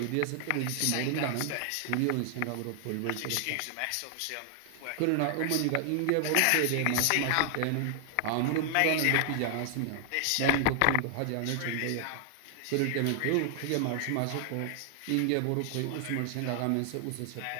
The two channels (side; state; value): both; different; correlation 0.00